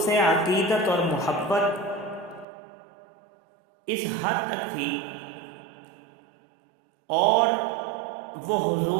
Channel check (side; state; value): left; drops out; at 2.5 s